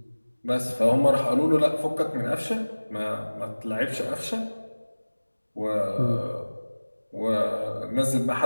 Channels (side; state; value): both; inverted; correlation -1.00